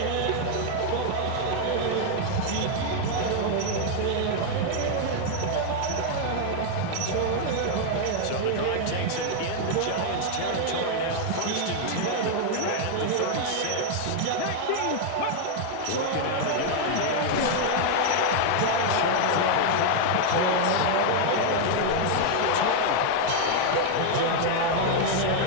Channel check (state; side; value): different; both; correlation 0.00